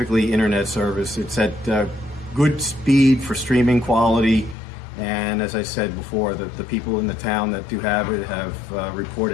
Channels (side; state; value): right; drops out; at 4.5 s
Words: internet service. It's at good speed for streaming quality. And as I said before, the people in the town that do have it have